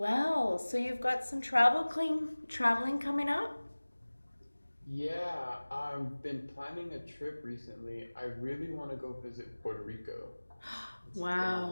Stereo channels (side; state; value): both; inverted; correlation -1.00